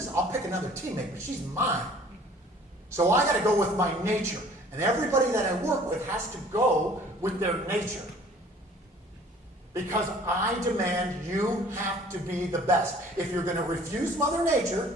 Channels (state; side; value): normal; both; correlation 0.52